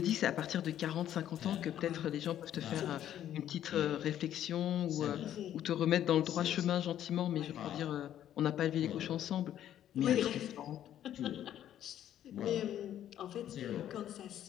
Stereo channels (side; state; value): right; quieter; 11.2 dB